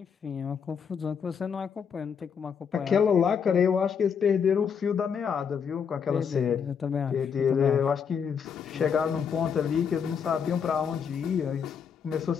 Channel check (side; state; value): right; quieter; 6.9 dB